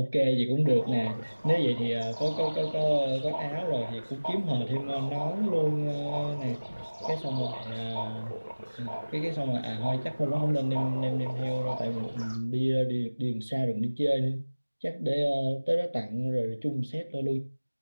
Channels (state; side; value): inverted; both; correlation -1.00